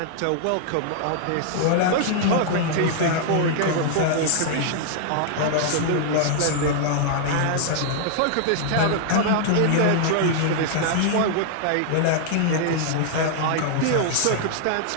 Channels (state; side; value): different; both; correlation -0.01